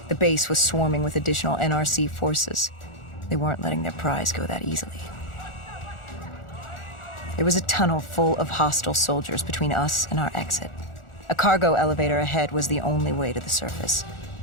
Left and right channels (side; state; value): right; late; 1.4 ms